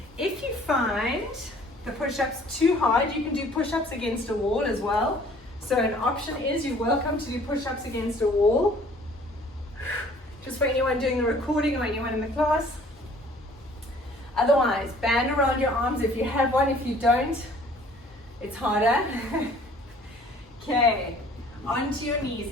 If you find the push-ups too hard, you can do push-ups against a wall as well. So an option is you're welcome to do push-ups against a wall. Just for anyone doing the recording or anyone in the class. Otherwise, band around your arms if you have one. If you don't, it's harder. Okay, onto your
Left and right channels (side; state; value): both; normal; correlation 0.54